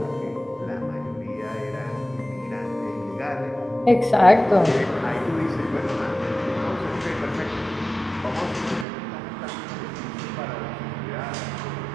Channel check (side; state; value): left; drops out; at 8.8 s